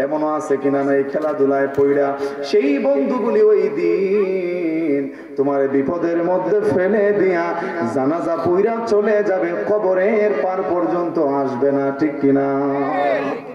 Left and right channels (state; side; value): identical; both; correlation 1.00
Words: এমনও আছে কিনা নাই খেলাধুলায় পইড়া সেই বন্ধুগুলি ওই দিন তোমার বিপদের মধ্যে ফেলে দিয়া জানাজা পইড়া চলে যাবে, কবরের পার পর্যন্ত আসবে না, ঠিক কিনা?